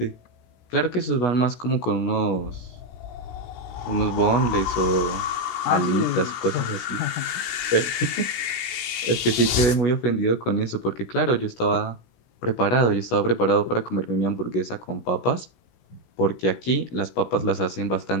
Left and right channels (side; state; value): right; late; 16 ms